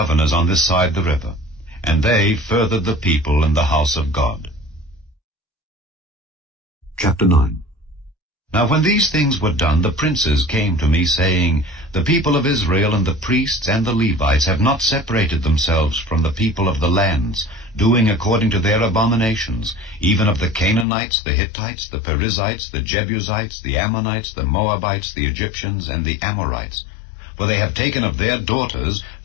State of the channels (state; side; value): drops out; right; at 20.9 s